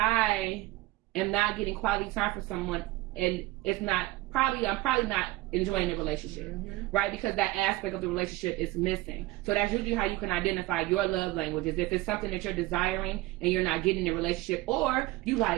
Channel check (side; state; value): left; quieter; 19.2 dB